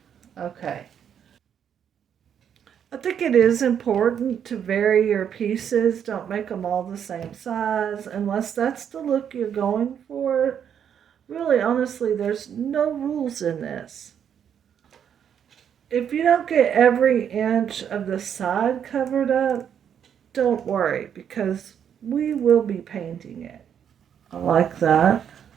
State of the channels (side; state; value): left; quieter; 8.5 dB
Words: Okay. I think it is important to vary your pieces. Don't make them all the same size unless that's the look you're going for. Really, honestly, there's no rules in this. If you don't get every inch of the side covered up, don't worry, because we will be painting it. I like that.